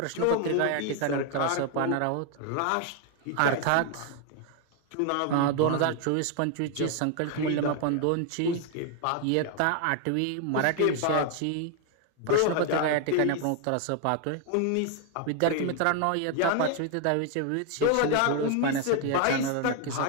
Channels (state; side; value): different; both; correlation 0.00